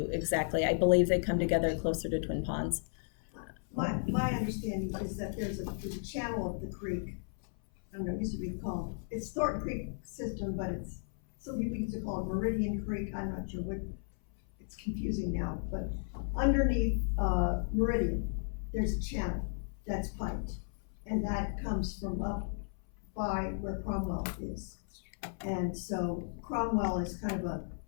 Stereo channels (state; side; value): silent; right; 55 dB below the other